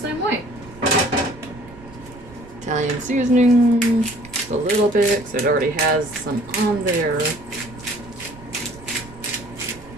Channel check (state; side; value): noise; right; rumble, 20 dB below the sound